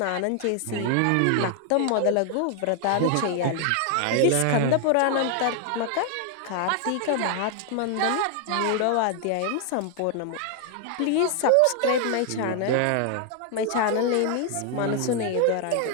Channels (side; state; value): both; different; correlation 0.00